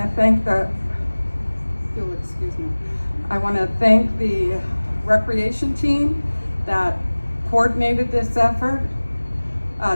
to thank you'll excuse me. I want to thank the recreation team that coordinated this effort.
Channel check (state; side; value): inverted; both; correlation -1.00